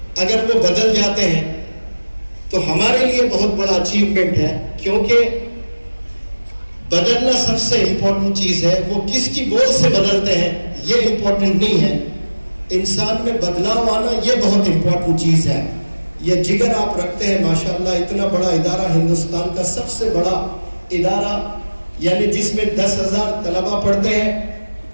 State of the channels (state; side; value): inverted; both; correlation -1.00